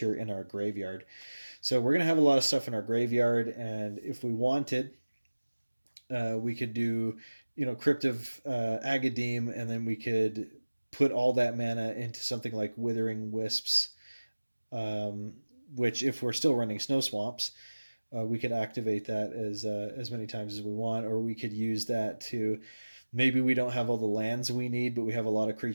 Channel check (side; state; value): both; inverted; correlation -1.00